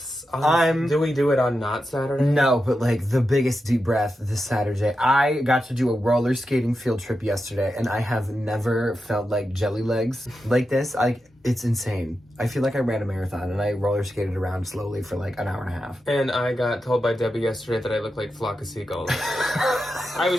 Do we do it on not Saturday? No, but like the biggest deep breath this Saturday. I got to do a roller skating field trip yesterday, and I have never felt like jelly legs like this. It's insane. I feel like I ran a marathon, and I roller skated around slowly for like an hour and a half. And I got told by Debbie yesterday that I look like a flock of seagulls. I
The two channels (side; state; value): both; normal; correlation 0.89